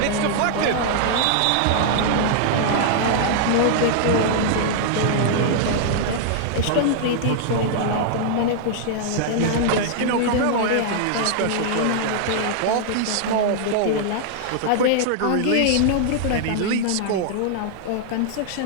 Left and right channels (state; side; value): different; both; correlation -0.01